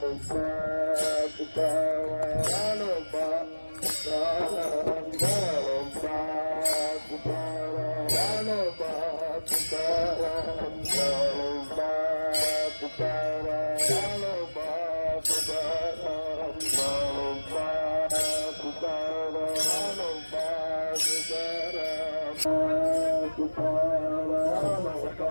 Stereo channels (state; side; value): inverted; both; correlation -1.00